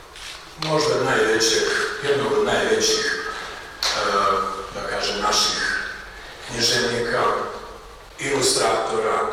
možda jednog od najvećih, da kažem, naših književnika, ilustratora,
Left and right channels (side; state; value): both; identical; correlation 1.00